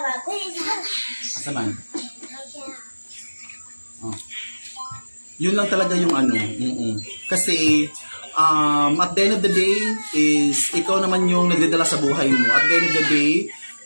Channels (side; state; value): both; inverted; correlation -1.00